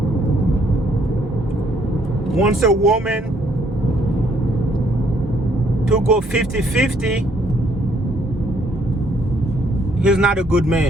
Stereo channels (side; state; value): both; normal; correlation 0.67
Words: wants a woman to go 50-50, he's not a good